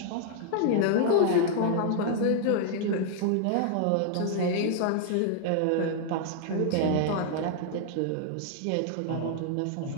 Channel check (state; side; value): different; both; correlation 0.00